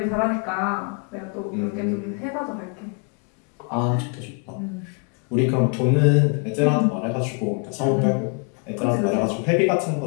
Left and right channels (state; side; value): quieter; right; 36.7 dB